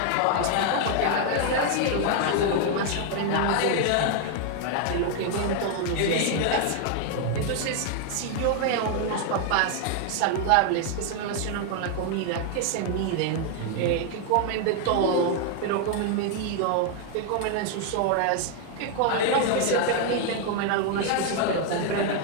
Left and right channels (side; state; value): both; different; correlation 0.00